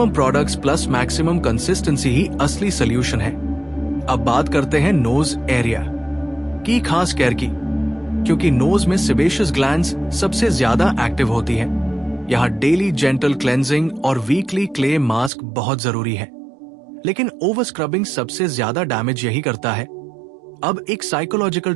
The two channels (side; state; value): left; drops out; at 15.3 s